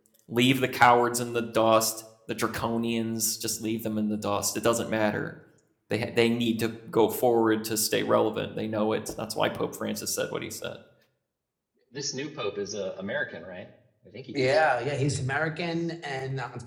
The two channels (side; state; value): both; identical; correlation 1.00